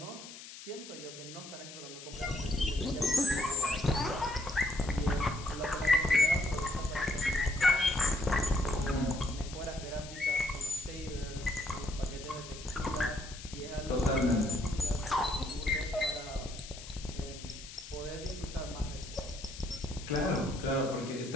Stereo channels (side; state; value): left; noise; hiss, 14 dB below the sound